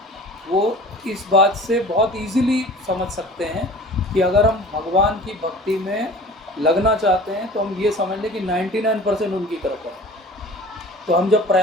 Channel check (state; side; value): normal; both; correlation 0.43